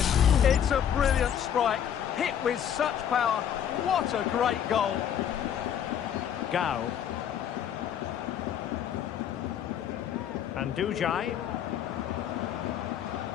It's a brilliant strike, hit with such power. What a great goal. Gao. And Dujai.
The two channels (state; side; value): quieter; right; 9.2 dB